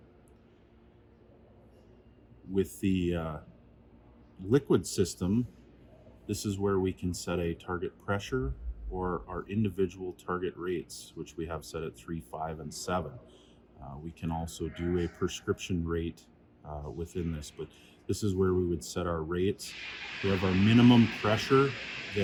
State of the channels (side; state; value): both; identical; correlation 1.00